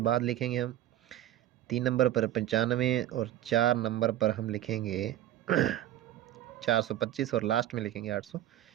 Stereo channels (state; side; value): quieter; left; 12.9 dB